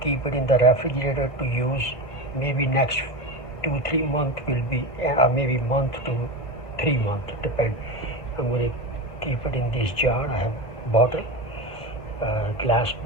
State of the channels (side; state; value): right; late; 1.5 ms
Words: keep it in the refrigerator to use maybe next 2-3 months will be, maybe month to 3 months, depend. I'm going to keep it in this jar. I have bottle, glass